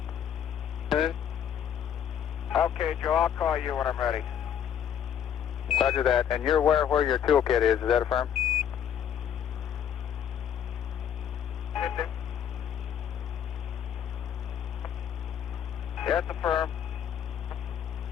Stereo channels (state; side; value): quieter; right; 9.1 dB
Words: Okay, Joe, I'll call you when I'm ready. Roger that. And you're aware where your toolkit is that affirm? That's affirm.